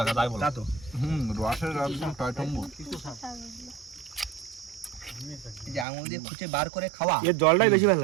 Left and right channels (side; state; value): left; drops out; at 5.9 s